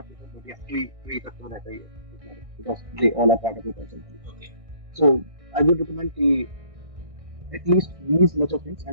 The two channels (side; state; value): left; late; 1.6 ms